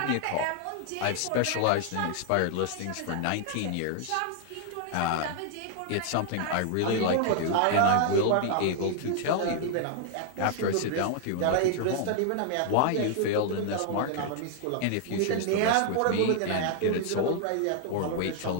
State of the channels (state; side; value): different; both; correlation 0.00